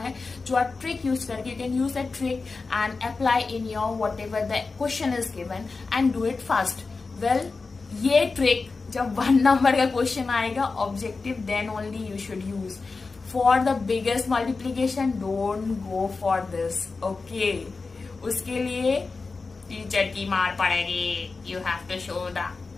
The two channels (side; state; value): right; quieter; 4.1 dB